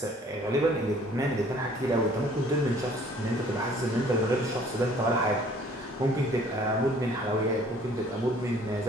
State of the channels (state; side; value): normal; both; correlation 0.55